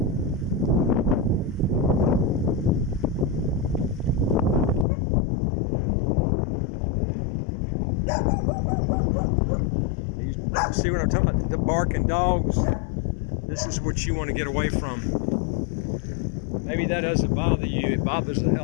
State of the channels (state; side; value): drops out; right; at 4.9 s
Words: See what I'm talking about? The barking dogs. This is what you want to get away from. Maybe that doesn't bother you. It bothers the